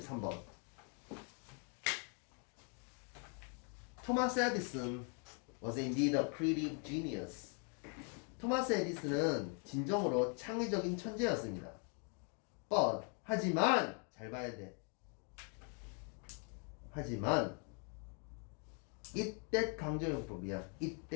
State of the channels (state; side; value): quieter; right; 39.7 dB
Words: 토마스 에디슨 was indeed a creative genius. 토마스 에디슨은 진정으로 창의적인 천재였습니다. But, 하지만, 잘 봐야 돼. 하지만 이때 강조용법이야.